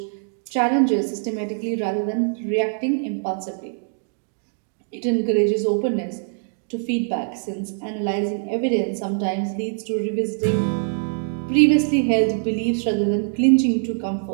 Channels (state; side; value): silent; left; digital silence